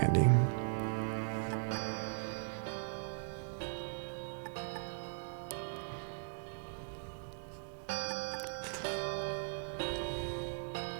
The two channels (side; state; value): left; silent; 52 dB below the other